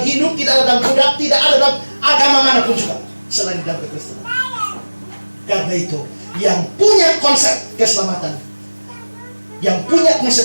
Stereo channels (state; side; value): inverted; both; correlation -1.00